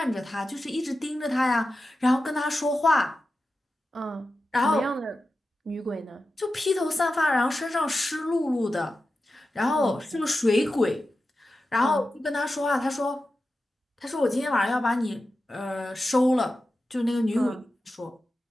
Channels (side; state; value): both; normal; correlation 0.92